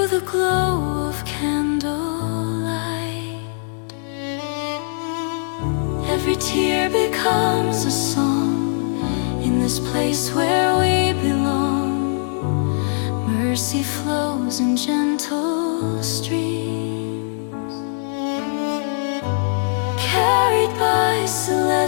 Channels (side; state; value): right; silent; digital silence